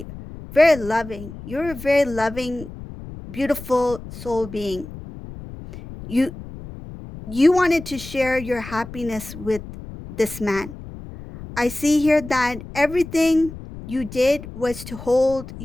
very loving. You're a very loving, beautiful soul being. You wanted to share your happiness with this man. I see here that everything you did was to hold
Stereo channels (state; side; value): noise; left; rumble, 13 dB below the sound